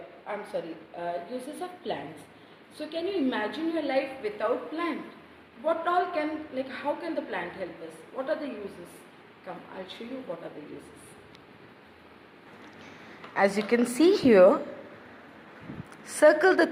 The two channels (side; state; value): both; identical; correlation 1.00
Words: uses of plants. So can you imagine your life without plant? What all can, how can the plant help us? What are the uses? Come, I'll show you what are the uses. As you can see here, circle the